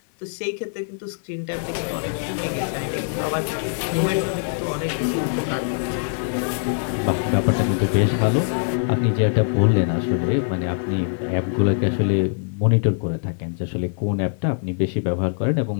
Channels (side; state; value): right; silent; digital silence